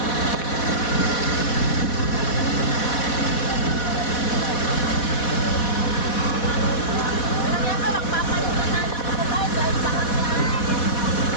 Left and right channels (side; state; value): right; late; 4.1 ms